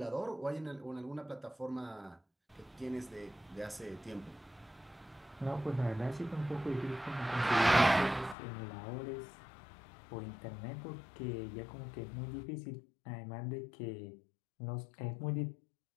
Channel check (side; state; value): right; drops out; at 8.3 s